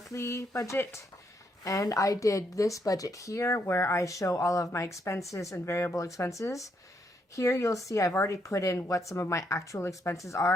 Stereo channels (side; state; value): both; normal; correlation 0.76